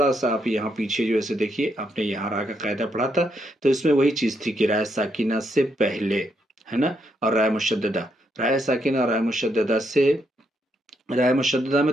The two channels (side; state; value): both; normal; correlation 0.77